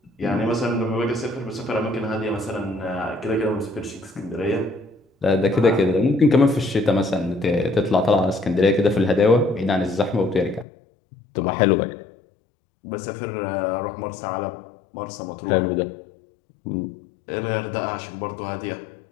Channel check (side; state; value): right; drops out; at 10.7 s